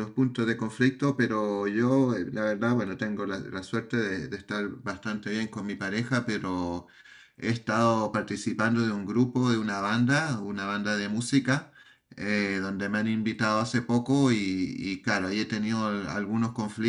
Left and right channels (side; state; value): both; identical; correlation 1.00